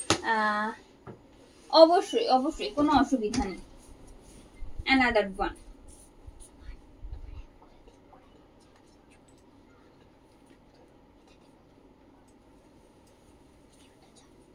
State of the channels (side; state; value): both; identical; correlation 1.00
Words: অবশ্যই অবশ্যই কোনো অসুবিধা নেই। Another one.